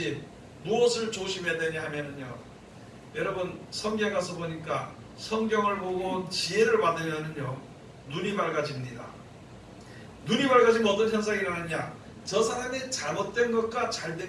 무엇을 조심해야 되냐 하면은요 여러분 성경 가서 보니까 성경을 보고 지혜를 받으면은요 눈이 밝아집니다. 눈이 밝아지면 어떤 현상이 일어나느냐 저 사람의 잘못된 것과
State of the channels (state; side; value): identical; both; correlation 1.00